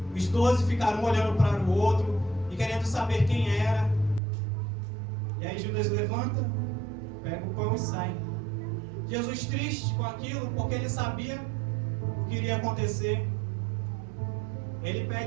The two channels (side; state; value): left; drops out; at 4.2 s